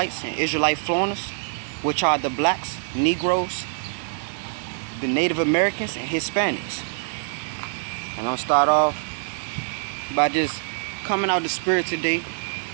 and Israelite foreigners, which are the blacks, Negroes, the Native Americans, and Hispanics. And I'll start off by just coming out the spirit today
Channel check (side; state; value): left; silent; digital silence